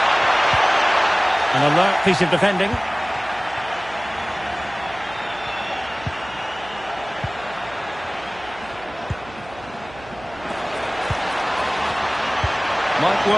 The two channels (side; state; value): right; noise; hum, 19 dB below the sound